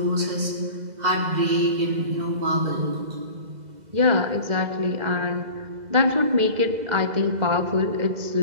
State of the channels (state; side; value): late; left; 2.0 ms